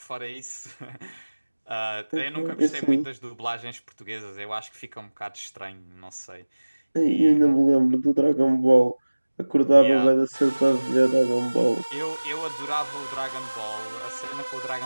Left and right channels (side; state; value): both; inverted; correlation -1.00